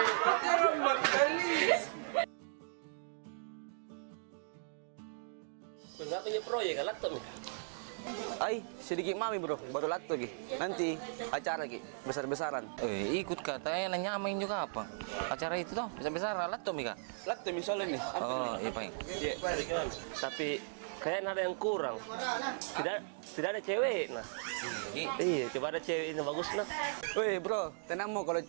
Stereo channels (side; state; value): left; silent; digital silence